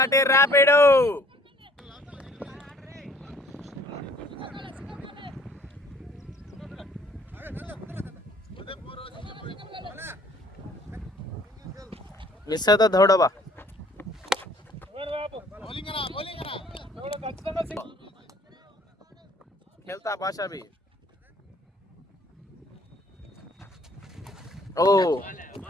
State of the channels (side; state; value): both; normal; correlation 0.57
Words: ర్యాపిడ్. మిస్ అవుతా దౌడబా. खेलता भाषा भी. ओ